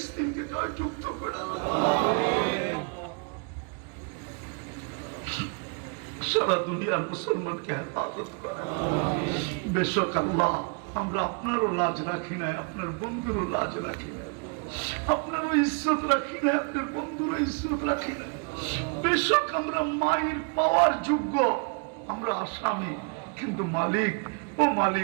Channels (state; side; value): quieter; left; 36.2 dB